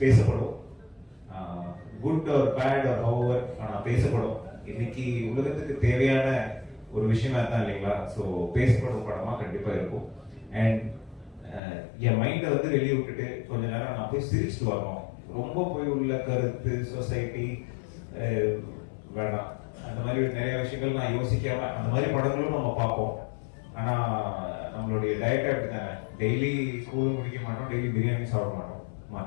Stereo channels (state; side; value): drops out; right; at 11.6 s